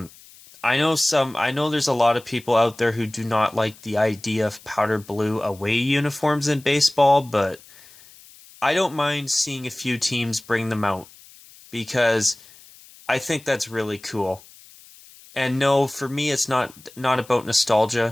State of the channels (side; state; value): left; noise; hiss, 23 dB below the sound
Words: know there's a lot of people out there who do not like the idea of powder blue away uniforms in baseball, but I don't mind seeing a few teams bring them out because I think that's really cool. And no, for me, it's not about